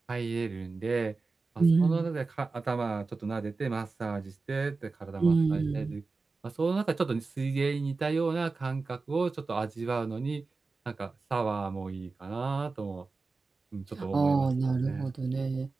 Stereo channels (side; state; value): left; quieter; 4.0 dB